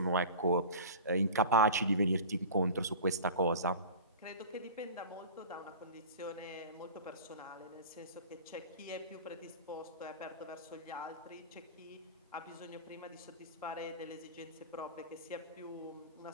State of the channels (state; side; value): inverted; both; correlation -0.35